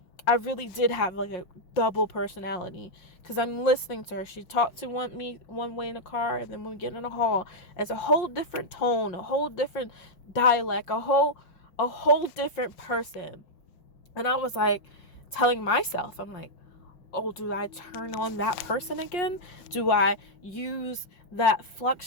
I really did have like a double personality, because I'm listening to her. She talked to me one way in the car, and then when we get in the hall, it's a whole different tone, a whole different dialect, a whole different person. And I was like telling myself, I'm like, oh, do I turn on that person again? Do I use that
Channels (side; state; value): right; late; 5.6 ms